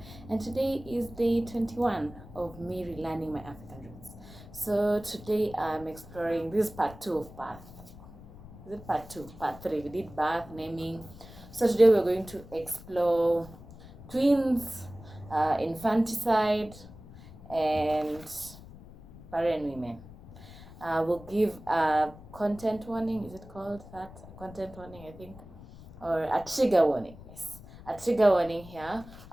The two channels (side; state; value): left; noise; rumble, 18 dB below the sound